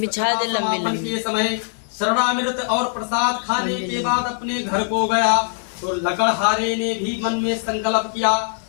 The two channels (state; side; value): silent; right; 65 dB below the other